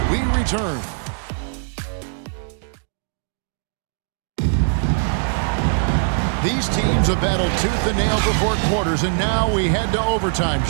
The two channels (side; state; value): left; silent; digital silence